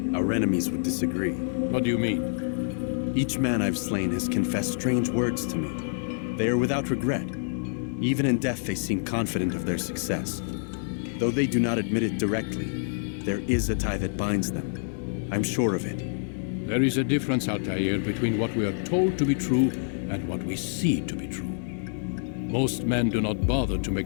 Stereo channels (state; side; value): silent; right; digital silence